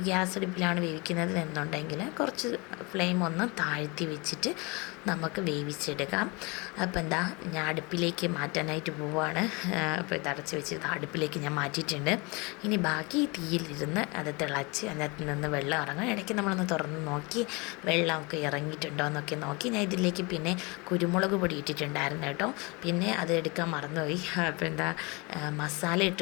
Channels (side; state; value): right; quieter; 27.5 dB